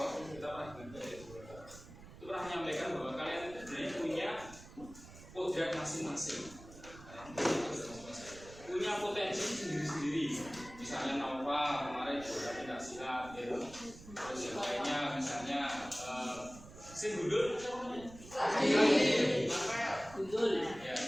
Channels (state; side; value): noise; right; rumble, 17 dB below the sound